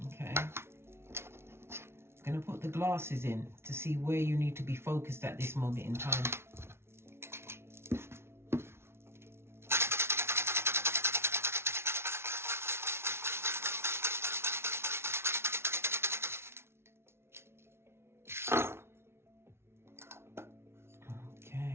Okay. Going to put the glasses in to see where you need to be focused at this moment in time.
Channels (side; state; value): left; late; 0.12 ms